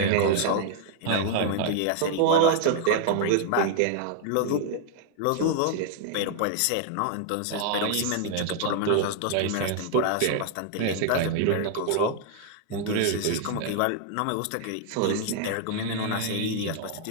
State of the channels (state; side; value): different; both; correlation 0.00